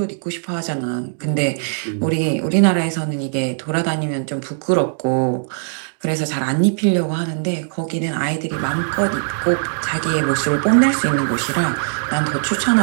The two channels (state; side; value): silent; left; digital silence